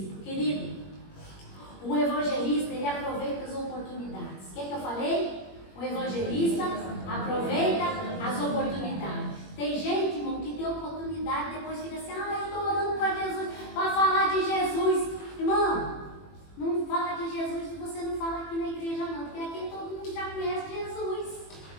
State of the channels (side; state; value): right; late; 21 ms